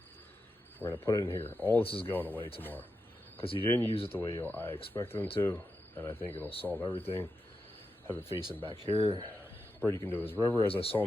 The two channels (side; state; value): both; normal; correlation 0.88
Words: We're going to put it in here. All this is going away tomorrow because you didn't use it the way I expected them to, and I think it'll solve everything. Have it facing back here. Brody can do his river as I saw